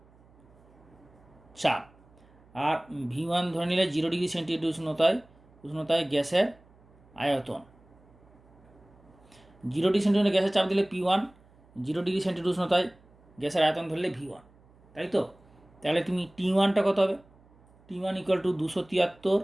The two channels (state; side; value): noise; right; hum, 28 dB below the sound